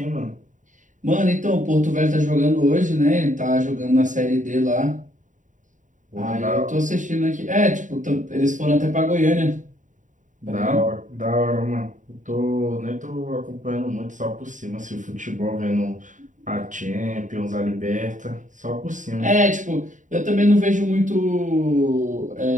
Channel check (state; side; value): late; left; 0.37 ms